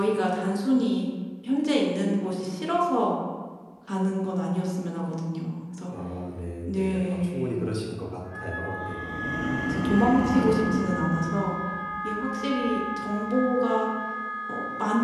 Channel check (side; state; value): both; identical; correlation 1.00